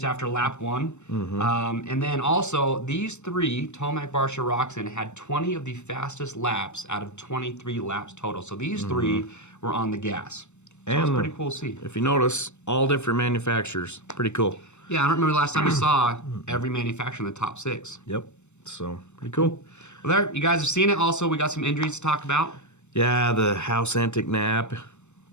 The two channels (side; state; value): right; late; 0.83 ms